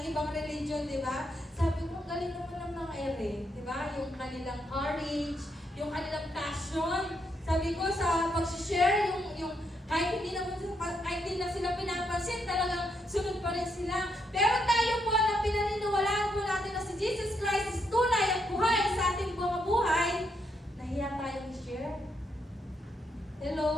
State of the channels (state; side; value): normal; both; correlation 0.78